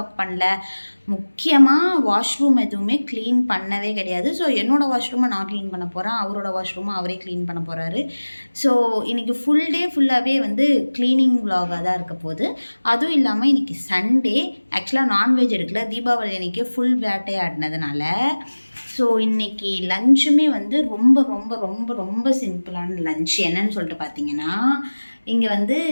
பண்ணல. முக்கியமாக வாஷ்ரூம் எதுவுமே க்ளீன் பண்ணவே கிடையாது. ஸோ என்னோடய வாஷ்ரூமை நான் க்ளீன் பண்ண போகிறேன், அவரோட வாஷ்ரூமை அவரே க்ளீன் பண்ண போகிறாரு. ஸோ இன்றைக்கி ஃபுல் டே ஃபுல்லாகவே வந்து க்ளீனிங் விலாகாக தான் இருக்க போகுது. அதுவும் இல்லாமல் இன்றைக்கி சண்டே. ஆக்சுவலாக நான்வெஜ் எடுக்கல, தீபாவளி அன்றைக்கி ஃபுல் வேட்டையாடினதுனால. ஸோ இன்றைக்கி லஞ்சுமே வந்து ரொம்ப ரொம்ப ரொம்ப ரொம்ப சிம்பிளான லஞ்ச். என்னன்னு சொல்லிட்டு பார்த்தீங்கன்னா, இங்கே வந்து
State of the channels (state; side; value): inverted; both; correlation -1.00